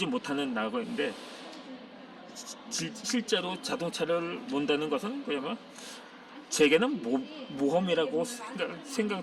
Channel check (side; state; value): both; identical; correlation 1.00